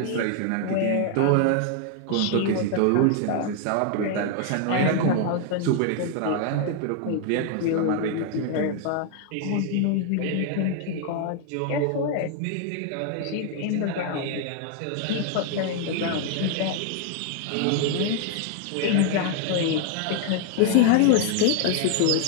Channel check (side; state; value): both; different; correlation 0.00